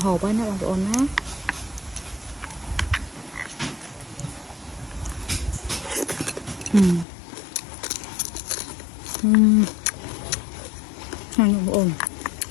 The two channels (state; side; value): drops out; right; at 7.1 s